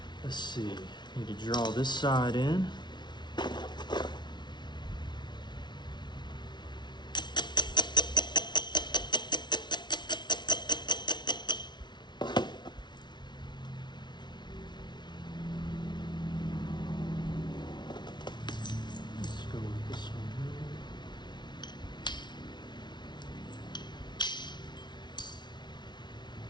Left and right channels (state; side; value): late; right; 0.21 ms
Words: Let's see, need to draw this side in. Let's go with this one